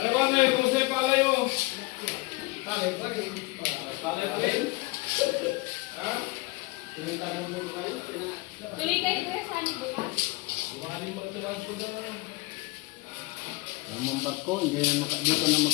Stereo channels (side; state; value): right; quieter; 23.5 dB